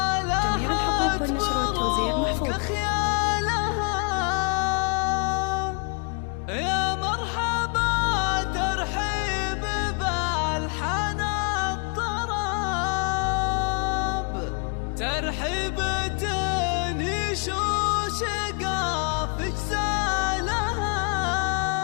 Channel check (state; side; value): quieter; right; 36.9 dB